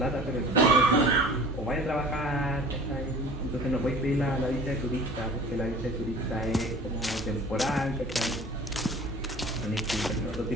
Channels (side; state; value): both; normal; correlation 0.43